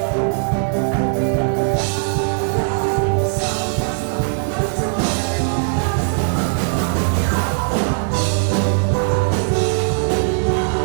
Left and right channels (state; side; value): silent; left; digital silence